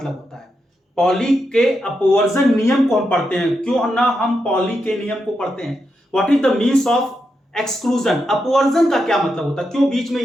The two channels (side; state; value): both; normal; correlation 0.85